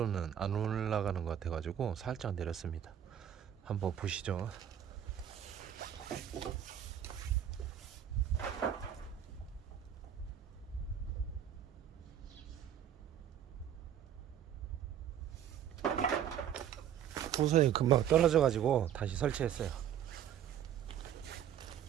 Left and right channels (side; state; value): left; quieter; 9.8 dB